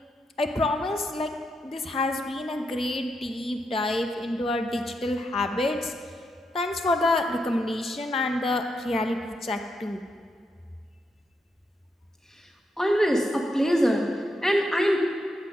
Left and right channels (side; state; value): both; normal; correlation 0.82